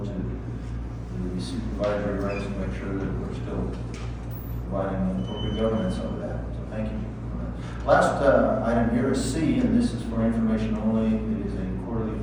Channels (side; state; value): both; identical; correlation 1.00